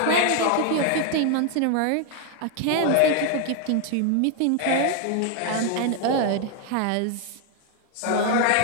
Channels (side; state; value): both; different; correlation 0.00